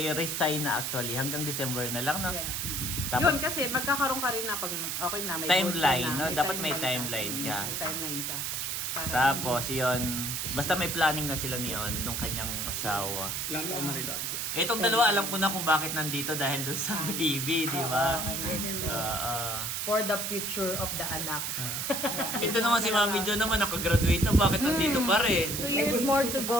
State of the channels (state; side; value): noise; right; hiss, 2 dB below the sound